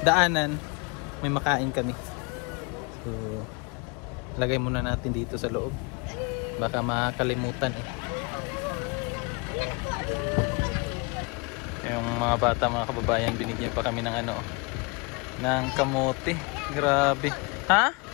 daanan, may makain kami. So lagay muna natin dito sa loob. Baka makalimutan eh. Yung mga bata, mga kababayan, binigyan pa kami ng ano, ng kamote. Grabe. Ha?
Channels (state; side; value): quieter; right; 29.9 dB